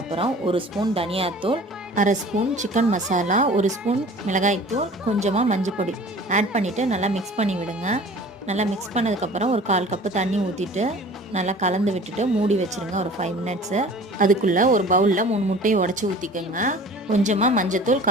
1 ஸ்பூன் தனியாத்தூள், 1/2 ஸ்பூன் சிக்கன் மசாலா, 1 ஸ்பூன் மிளகாய்த்தூள், கொஞ்சமாக மஞ்சள் பொடி ஆட் பண்ணிவிட்டு நல்லா மிக்ஸ் பண்ணி விடுங்க. நல்லா மிக்ஸ் பண்ணதுக்கப்புறம் ஒரு 1/4 கப்பு தண்ணி ஊற்றிட்டு நல்லா கலந்து விட்டுட்டு மூடி வச்சுருங்க ஒரு 5 மினிட்ஸு. அதுக்குள்ளே ஒரு பவுலில் 3 முட்டையை உடச்சி ஊற்றிக்கோங்க. கொஞ்சமாக மஞ்சத்தூள்,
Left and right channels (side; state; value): both; normal; correlation 0.45